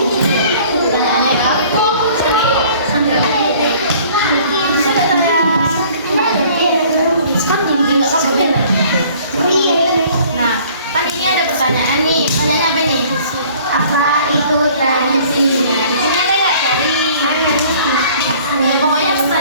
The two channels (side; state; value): both; inverted; correlation -0.53